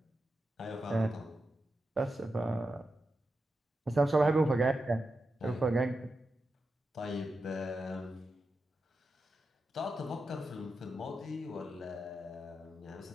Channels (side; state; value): both; normal; correlation 0.89